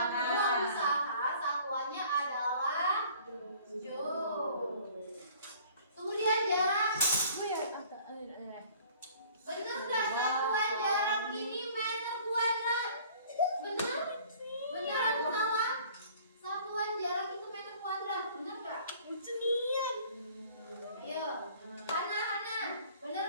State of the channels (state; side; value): inverted; both; correlation -0.52